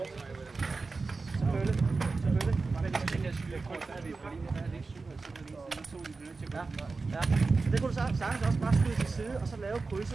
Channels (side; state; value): left; quieter; 4.0 dB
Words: Selvfølgelig. Men det tænker jeg, der er vi jo på linje, der er det ikke 7 eller 7 lige siden, så de ja. Så det kunne du sagtens også bare skyde til side, og så lave